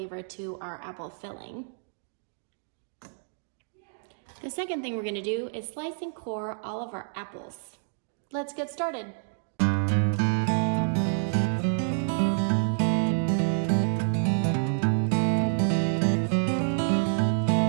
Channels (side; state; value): left; silent; digital silence